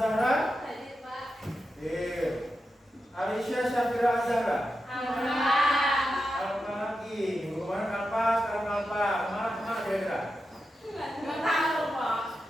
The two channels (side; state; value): both; normal; correlation 0.89